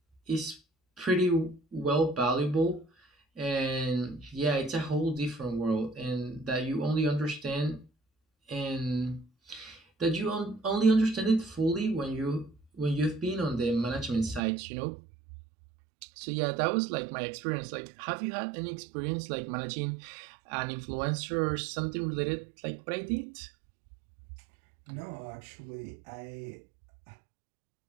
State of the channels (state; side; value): drops out; left; at 14.4 s